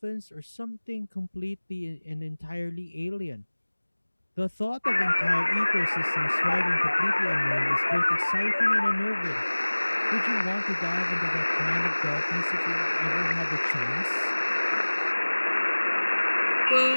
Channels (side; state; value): both; inverted; correlation -1.00